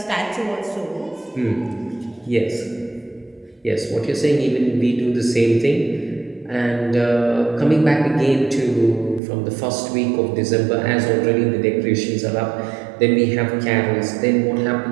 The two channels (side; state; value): left; drops out; at 9.2 s